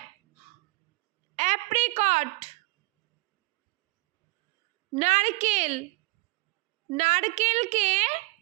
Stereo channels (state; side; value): quieter; left; 24.1 dB